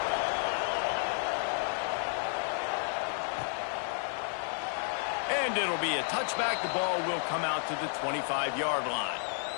And it'll be a touchback. The ball will come out to the 25-yard line.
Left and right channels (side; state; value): right; silent; 56 dB below the other